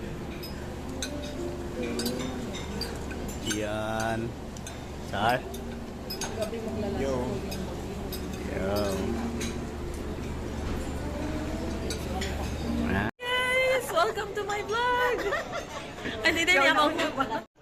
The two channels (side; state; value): both; identical; correlation 1.00